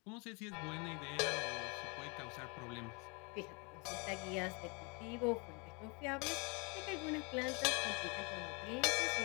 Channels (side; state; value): right; quieter; 31.9 dB